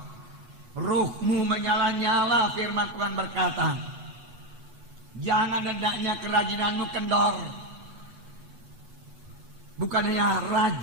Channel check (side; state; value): left; late; 8.2 ms